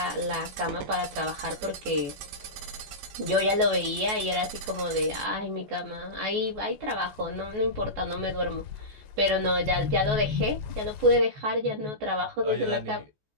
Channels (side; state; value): left; late; 14 ms